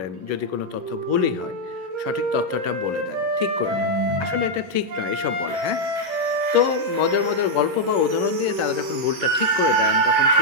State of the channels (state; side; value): late; left; 11 ms